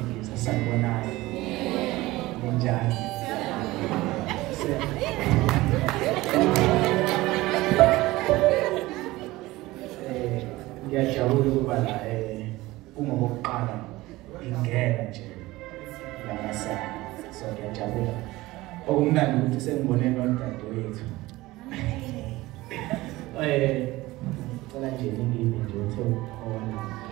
sanibonayo. Njani? Ngiyajabula ukuba la kungokuqala ingena nje la masana. So ngiyajabula. Okumnandi ukuthi sengibone nodadewethu. Cela nje ngingimi nje uthe ukhona.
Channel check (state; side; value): quieter; left; 19.0 dB